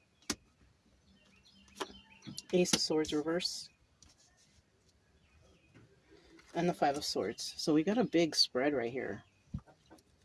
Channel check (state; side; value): identical; both; correlation 1.00